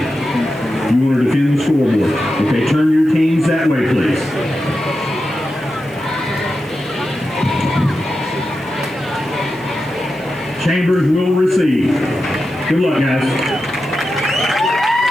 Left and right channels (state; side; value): noise; right; hiss, 28 dB below the sound